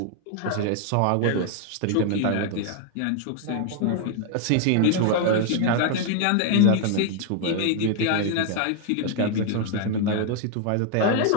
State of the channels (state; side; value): different; both; correlation 0.00